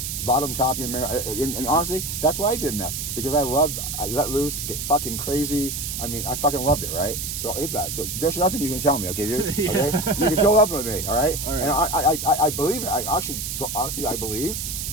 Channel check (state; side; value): noise; right; hiss, 4 dB below the sound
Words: bottom, top, and honestly, that's why I did meth, because I let loose, get fucking crazy. I mean, I fucking loved it, right? So it's that. So there's nothing you can tell me, okay, dude? Yeah. Okay, you can fill up with me, all right? All right. And I believe it. I actually, honestly, I believe